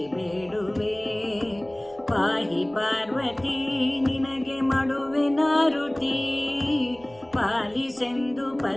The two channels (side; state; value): right; noise; rumble, 26 dB below the sound